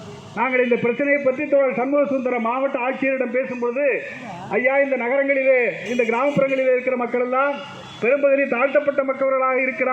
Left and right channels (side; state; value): both; identical; correlation 1.00